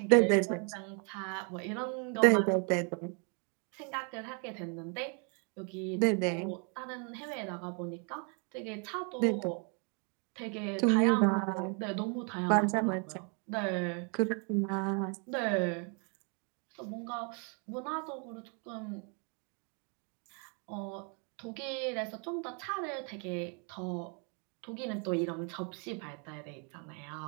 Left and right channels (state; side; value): quieter; left; 37.7 dB